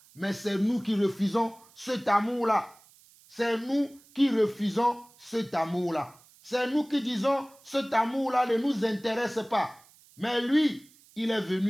Mais c'est nous qui refusons cet amour-là. C'est nous qui refusons cet amour-là. C'est nous qui disons, cet amour-là ne nous intéresse pas. Mais lui, il est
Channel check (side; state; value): right; noise; hiss, 27 dB below the sound